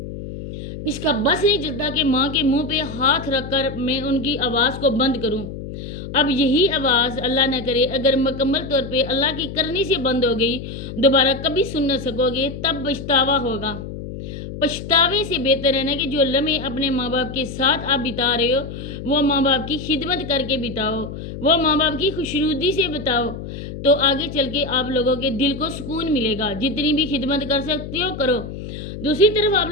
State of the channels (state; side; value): noise; left; hum, 9 dB below the sound